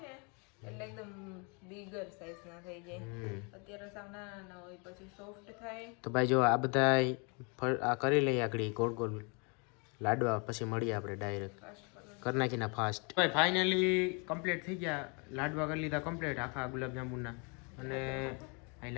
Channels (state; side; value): quieter; right; 33.6 dB